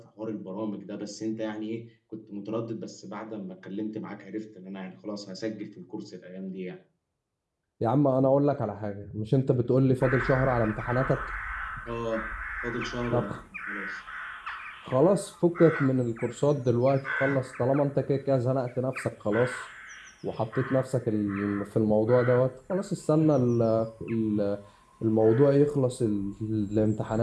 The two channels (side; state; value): both; identical; correlation 1.00